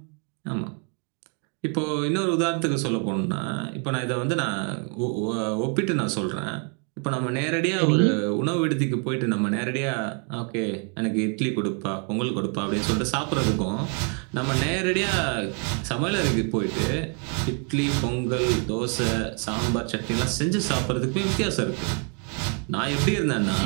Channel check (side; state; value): left; quieter; 39.5 dB